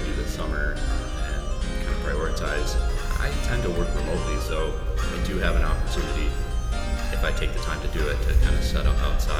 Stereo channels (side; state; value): both; identical; correlation 1.00